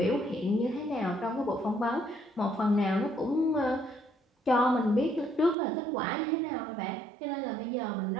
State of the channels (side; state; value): left; drops out; at 5.6 s